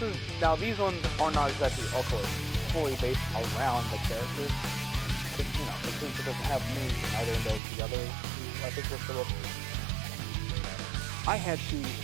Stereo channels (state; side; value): drops out; left; at 7.6 s